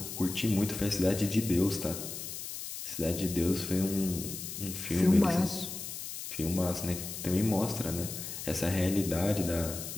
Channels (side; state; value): left; noise; hiss, 8 dB below the sound